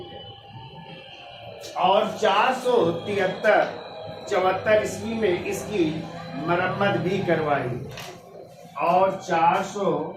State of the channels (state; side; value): identical; both; correlation 1.00